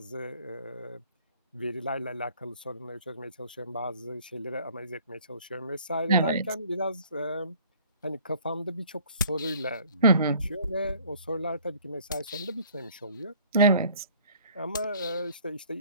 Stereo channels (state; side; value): inverted; both; correlation -0.55